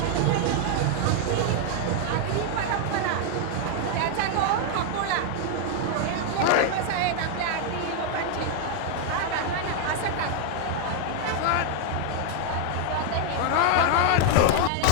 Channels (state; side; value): different; both; correlation 0.00